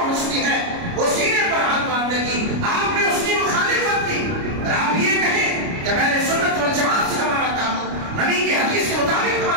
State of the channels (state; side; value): late; left; 29 ms